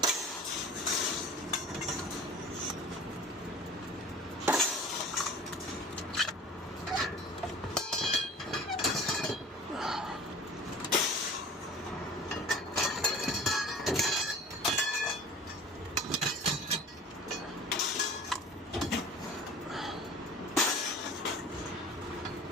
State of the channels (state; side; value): normal; both; correlation 0.42